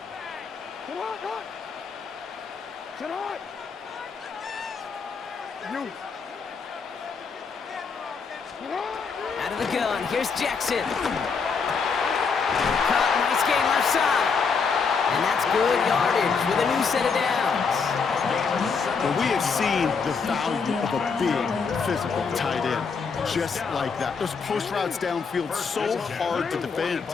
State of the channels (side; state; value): right; quieter; 5.4 dB